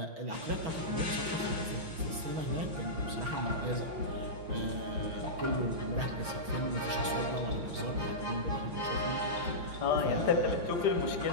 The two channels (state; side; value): late; left; 6.2 ms